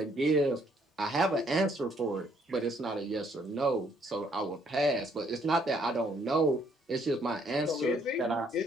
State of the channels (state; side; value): normal; both; correlation 0.67